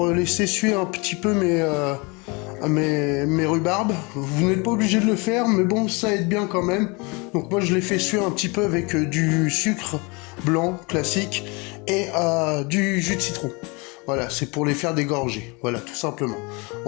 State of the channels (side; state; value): right; quieter; 28.7 dB